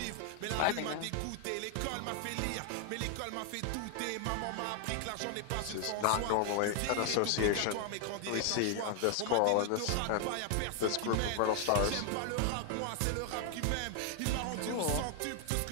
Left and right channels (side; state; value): both; different; correlation 0.00